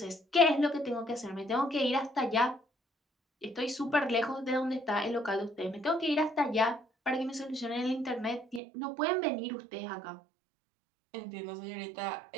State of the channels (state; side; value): drops out; left; at 8.6 s